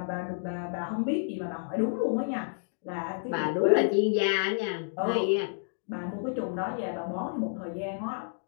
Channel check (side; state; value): right; silent; digital silence